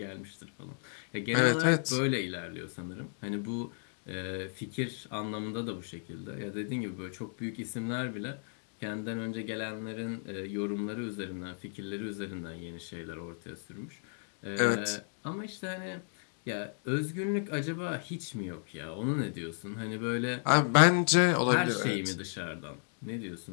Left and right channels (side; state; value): right; silent; digital silence